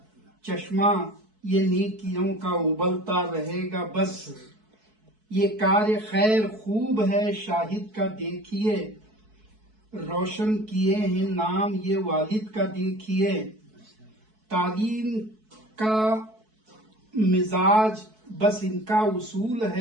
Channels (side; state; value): left; late; 4.6 ms